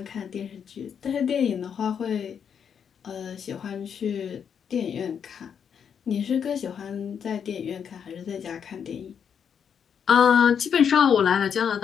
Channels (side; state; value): right; quieter; 7.6 dB